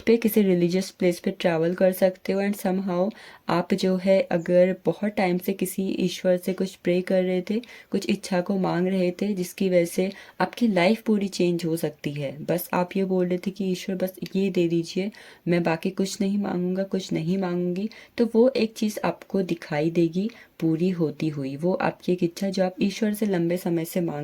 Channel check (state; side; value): identical; both; correlation 1.00